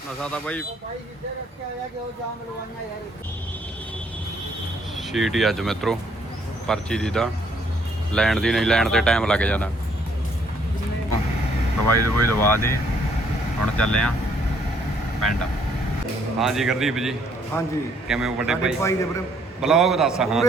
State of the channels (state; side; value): normal; both; correlation 0.66